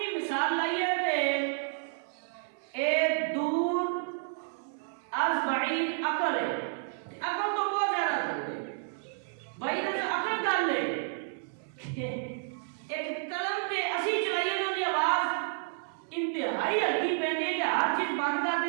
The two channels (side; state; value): left; silent; 57 dB below the other